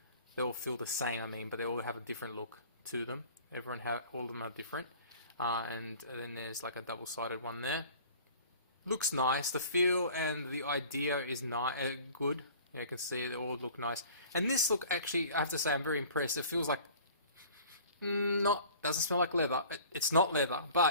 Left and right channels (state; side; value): inverted; both; correlation -0.46